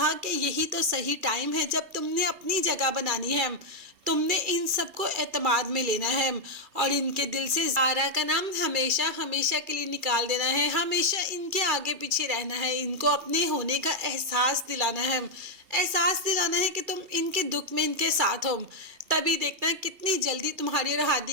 कि यही तो सही टाइम है जब तुमने अपनी जगह बनानी है, तुमने इन सबको एतमाद में लेना है और इनके दिल से ज़ारा का नाम हमेशा हमेशा के लिए निकाल देना है। हमेशा इनके आगे पीछे रहना है, इनको अपने होने का एहसास दिलाना है। एहसास दिलाना है कि तुम इनके दुख में इनके साथ हो। तभी देखना कितनी जल्दी तुम्हारी और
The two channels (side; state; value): left; late; 2.4 ms